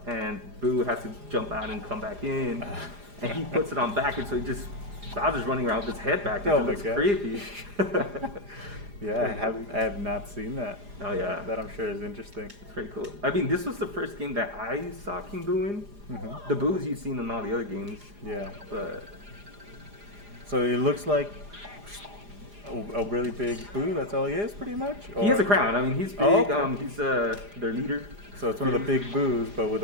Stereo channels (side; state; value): left; late; 4.9 ms